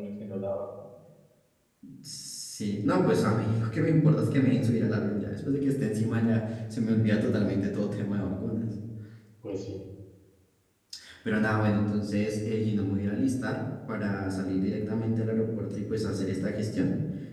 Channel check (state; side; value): identical; both; correlation 1.00